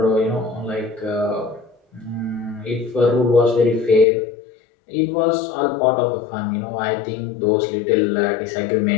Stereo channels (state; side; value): drops out; right; at 4.0 s